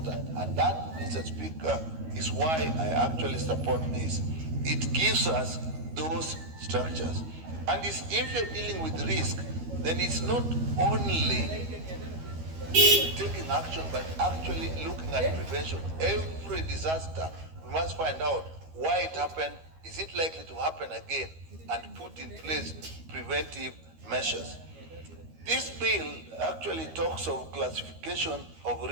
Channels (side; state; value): left; late; 13 ms